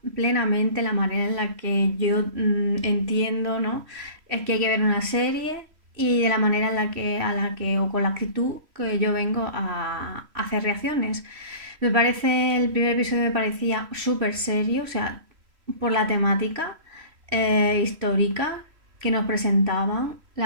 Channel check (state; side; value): late; left; 3.1 ms